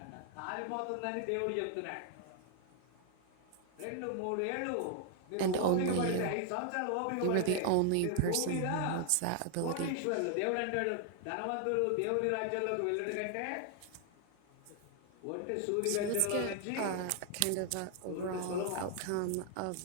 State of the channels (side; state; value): both; different; correlation 0.00